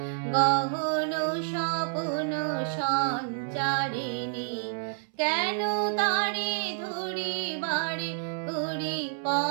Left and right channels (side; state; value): left; silent; 59 dB below the other